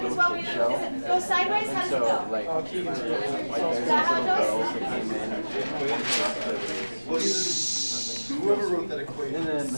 as well. Does it go sideways? How does it go? like, Is that how it goes? Whoever wrote that equation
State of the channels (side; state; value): both; inverted; correlation -1.00